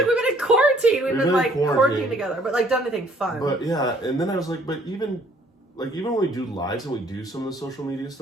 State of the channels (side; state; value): both; normal; correlation 0.61